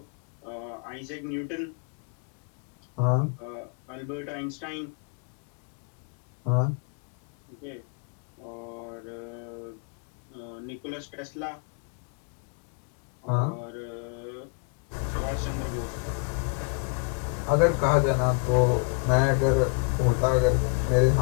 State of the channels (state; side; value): quieter; right; 34.9 dB